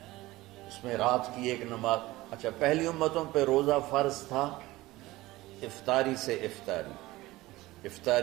اس میں رات کی ایک نماز۔ اچھا پہلی امتوں پہ روزہ فرض تھا افطاری سے افطاری،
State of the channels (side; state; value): left; quieter; 18.7 dB